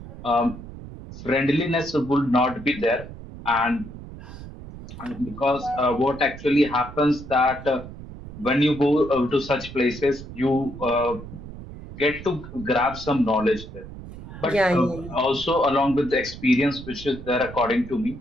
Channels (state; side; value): noise; right; rumble, 13 dB below the sound